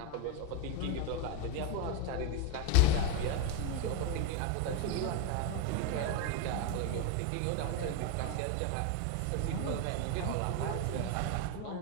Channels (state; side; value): different; both; correlation 0.02